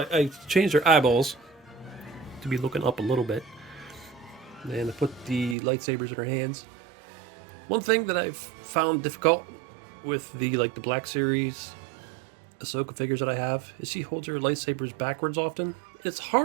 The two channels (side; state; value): left; drops out; at 5.6 s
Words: I changed her eyeballs to be looking up a little bit. And I put the lightsabers in her hands. One thing that I've found difficult with the Black Series Ahsoka figures that I have is she holds her lightsabers backwards often. It's